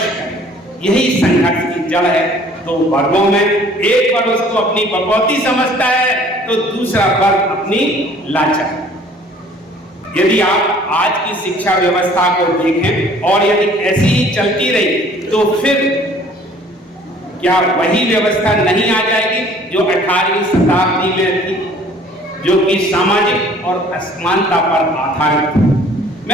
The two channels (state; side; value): normal; both; correlation 0.54